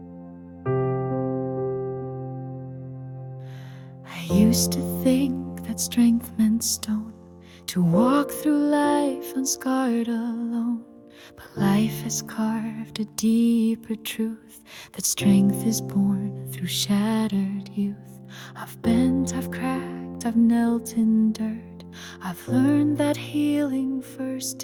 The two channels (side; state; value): both; identical; correlation 1.00